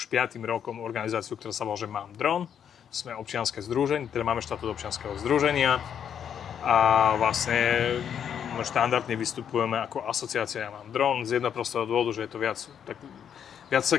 5. rokom organizáciu, ktorá sa volá, že Mám dron. Sme občianske združenie, teda máme štatút občianskeho združenia a vlastne štandardne vystupujeme ako asociácia Mám dron z jedného prostého dôvodu, že je to viac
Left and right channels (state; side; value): quieter; right; 8.5 dB